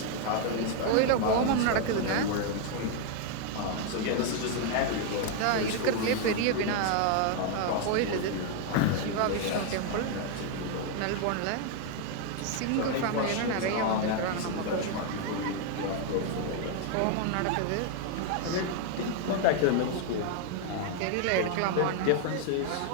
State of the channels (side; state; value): both; different; correlation 0.00